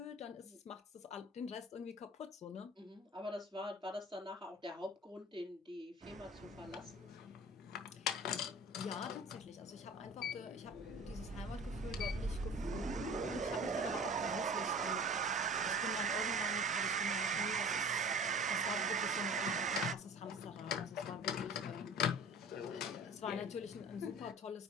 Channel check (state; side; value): normal; both; correlation 0.41